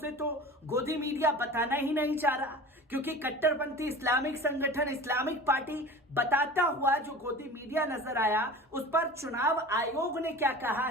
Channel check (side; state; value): both; normal; correlation 0.37